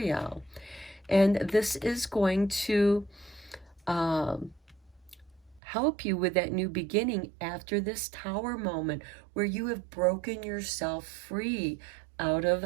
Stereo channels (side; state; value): left; drops out; at 5.6 s